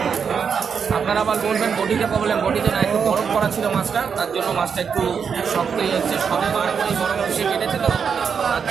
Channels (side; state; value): left; quieter; 6.5 dB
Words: আপনারা আবার বলবেন বটিতে প্রবলেম, বটিতে না, একটু বরফ করা ছিল মাছটা, তার জন্য মাছটা একটু শক্তই হচ্ছে। সবে বরফ এসে কেটেছে তো, তার